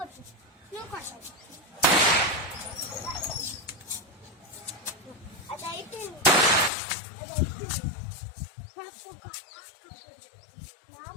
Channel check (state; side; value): drops out; right; at 6.7 s